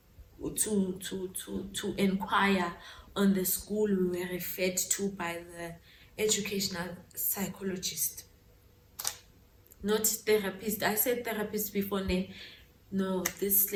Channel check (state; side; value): identical; both; correlation 1.00